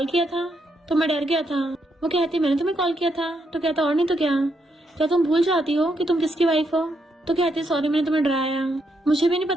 किया था, तो मैं डर गया था। वो कहती मैंने तुम्हें कॉल किया था। तो कहता और नहीं तो क्या तुम भूल जाती हो कि तुम किसकी वाइफ हो? तो कहती सॉरी मैंने तुम्हें डराया, मुझे भी नहीं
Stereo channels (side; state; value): both; normal; correlation 0.79